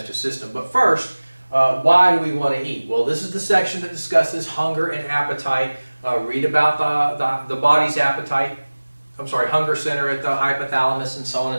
system. But first, why do we want to eat? Well, this is the section that discusses hunger and appetite. Read about the body's appetite. Hunger center at the hypothalamus and so on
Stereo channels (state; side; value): inverted; both; correlation -1.00